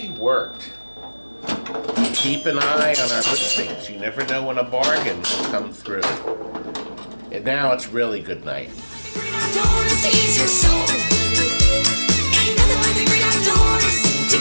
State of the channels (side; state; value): both; inverted; correlation -1.00